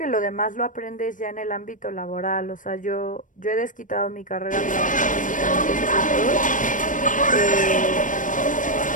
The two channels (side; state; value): right; late; 0.38 ms